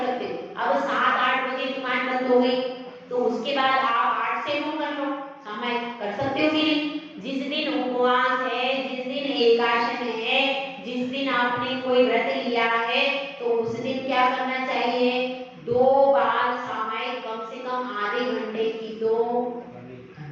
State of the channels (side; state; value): both; identical; correlation 1.00